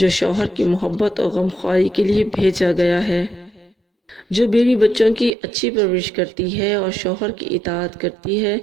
شوہر کی محبت اور غمخواری کے لیے بھیجا گیا ہے۔ جو بیوی بچوں کی اچھی پرورش کرتی ہے اور شوہر کی اطاعت کرتی ہے،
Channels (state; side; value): drops out; left; at 5.3 s